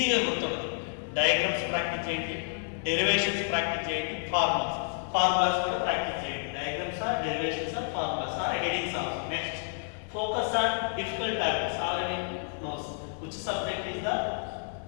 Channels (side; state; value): right; silent; 58 dB below the other